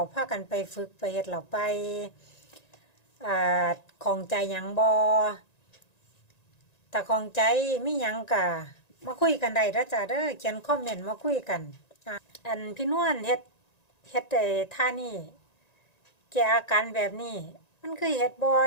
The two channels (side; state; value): right; late; 1.9 ms